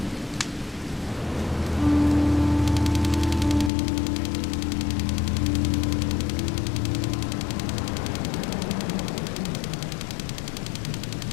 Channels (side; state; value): right; drops out; at 3.7 s